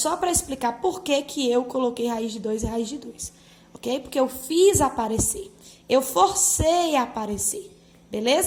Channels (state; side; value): identical; both; correlation 1.00